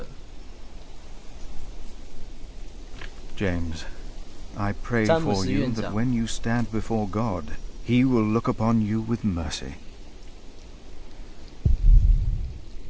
James, I pray for you that when you stand before God, He will look upon you with mercy.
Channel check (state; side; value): identical; both; correlation 1.00